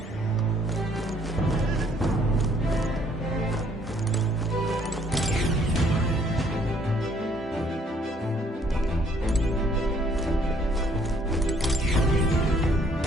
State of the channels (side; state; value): both; normal; correlation 0.63